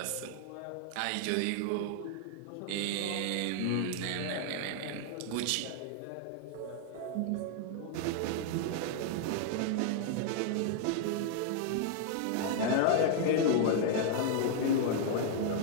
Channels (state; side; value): different; both; correlation 0.00